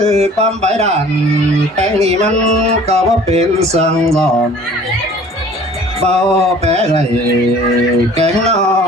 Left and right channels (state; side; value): normal; both; correlation 0.49